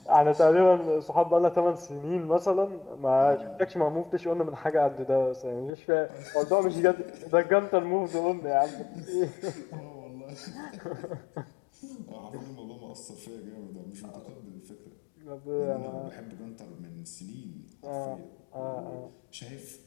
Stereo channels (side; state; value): right; drops out; at 5.7 s